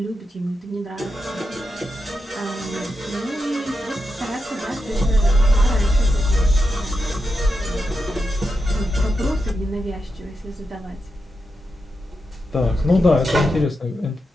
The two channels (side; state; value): both; normal; correlation 0.87